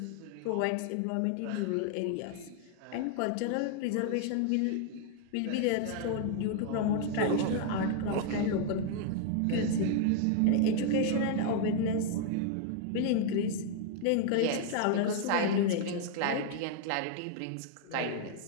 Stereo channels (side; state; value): both; different; correlation 0.00